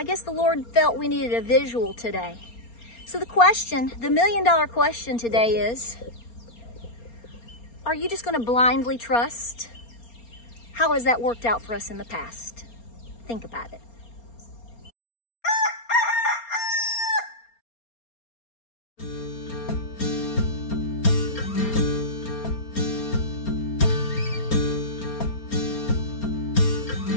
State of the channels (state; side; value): late; right; 4.3 ms